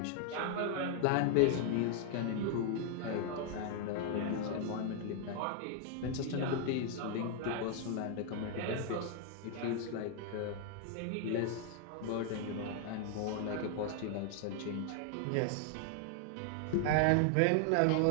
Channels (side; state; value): both; different; correlation 0.00